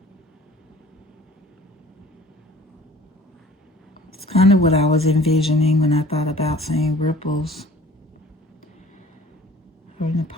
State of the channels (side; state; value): both; normal; correlation 0.49